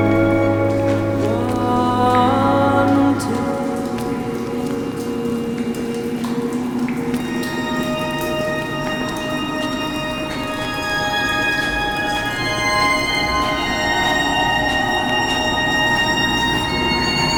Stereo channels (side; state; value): both; identical; correlation 1.00